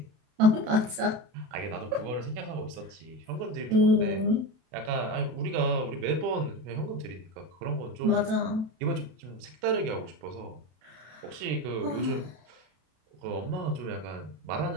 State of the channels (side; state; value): left; late; 32 ms